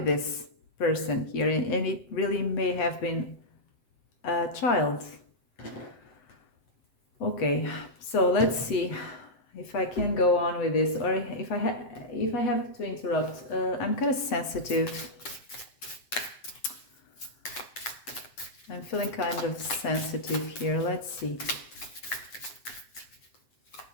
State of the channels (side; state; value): right; late; 7.8 ms